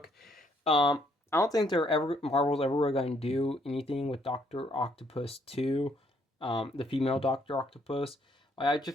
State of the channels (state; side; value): normal; both; correlation 0.69